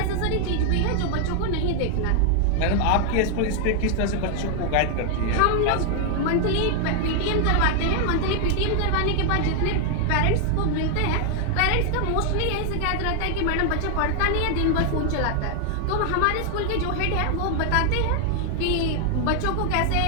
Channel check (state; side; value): different; both; correlation 0.00